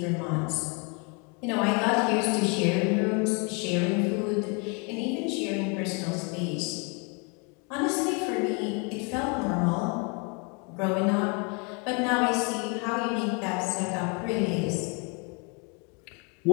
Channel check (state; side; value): quieter; right; 33.0 dB